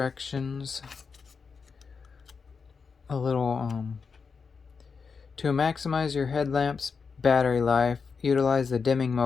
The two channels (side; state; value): right; quieter; 5.4 dB